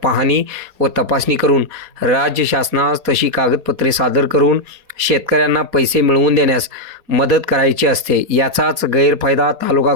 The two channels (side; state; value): left; late; 4.2 ms